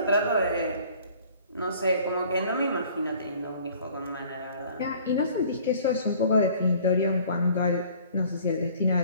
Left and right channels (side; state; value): both; inverted; correlation -0.52